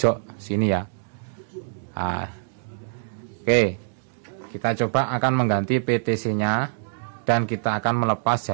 sini ya. Nah, oke, kita coba akan mengganti PTC nya dan kita akan melepas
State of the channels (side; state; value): left; silent; digital silence